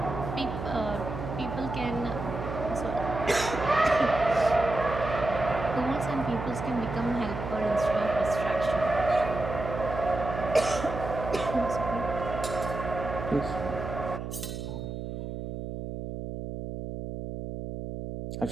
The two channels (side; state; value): right; noise; hum, 6 dB below the sound